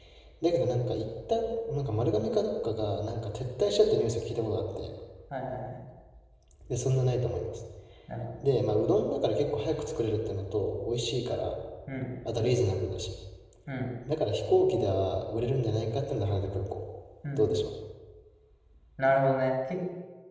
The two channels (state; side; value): identical; both; correlation 1.00